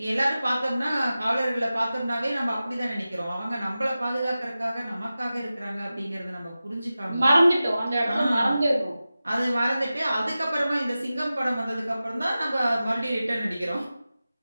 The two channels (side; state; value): both; inverted; correlation -0.95